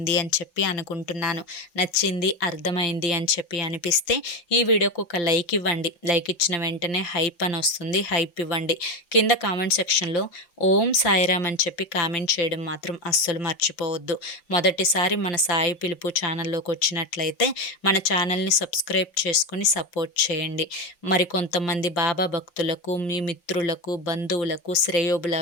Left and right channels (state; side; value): late; right; 5.8 ms